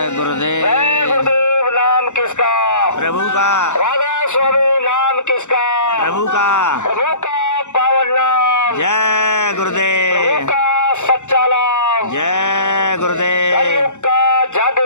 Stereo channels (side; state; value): right; late; 0.84 ms